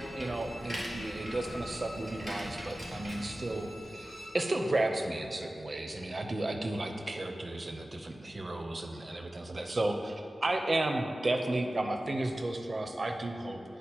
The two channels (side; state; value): both; normal; correlation 0.96